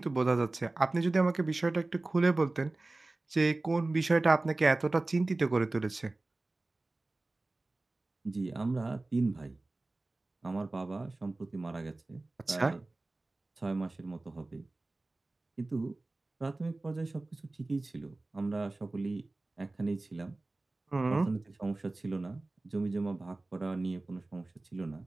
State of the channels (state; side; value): quieter; left; 3.0 dB